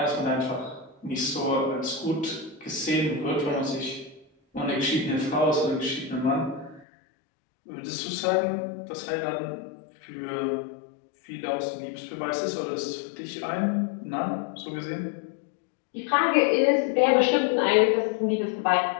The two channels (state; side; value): drops out; right; at 6.9 s